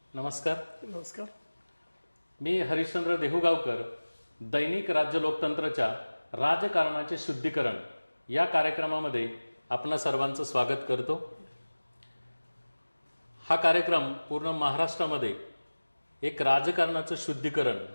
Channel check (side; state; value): both; inverted; correlation -1.00